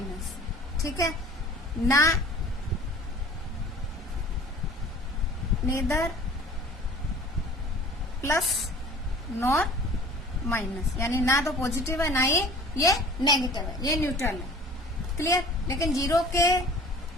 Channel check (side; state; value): both; normal; correlation 0.46